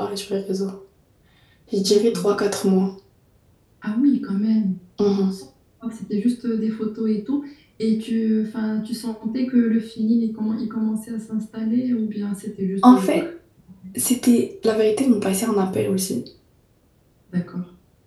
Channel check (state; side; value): identical; both; correlation 1.00